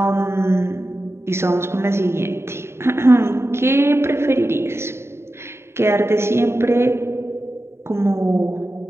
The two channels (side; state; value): left; late; 0.12 ms